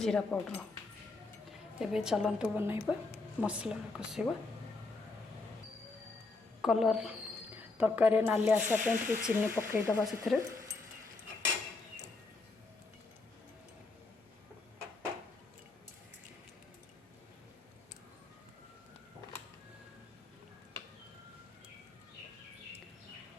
पाउडर। एबे चलतु बनइबा मसला कषा कलर तरकारी नाली आसापी चीनी पकईदबा से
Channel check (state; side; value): quieter; right; 3.6 dB